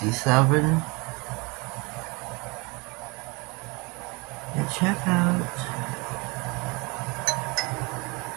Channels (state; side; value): quieter; left; 27.8 dB